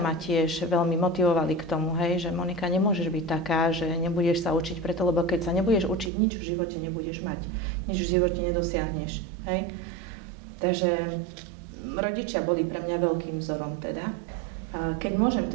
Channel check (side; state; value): left; drops out; at 6.1 s